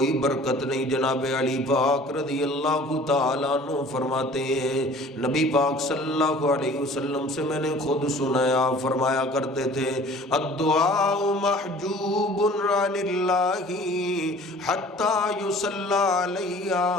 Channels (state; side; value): normal; both; correlation 0.48